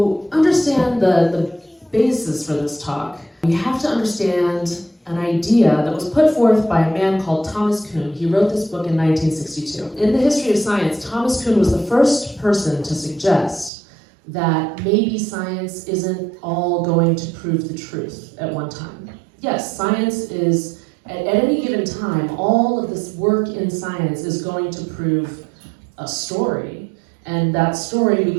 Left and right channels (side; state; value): left; drops out; at 13.7 s